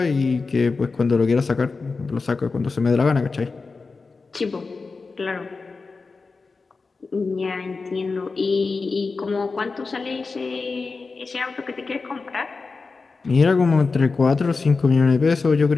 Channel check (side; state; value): right; quieter; 4.2 dB